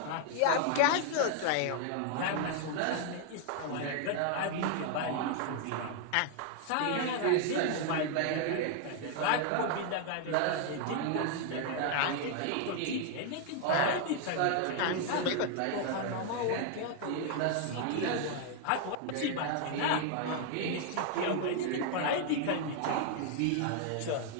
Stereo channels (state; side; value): different; both; correlation 0.00